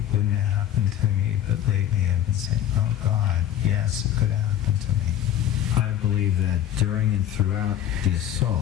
wouldn't have happened to me, but lately I've been saying, oh God, yes, it could have happened to me. I believe that during and throughout the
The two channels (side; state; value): right; quieter; 11.1 dB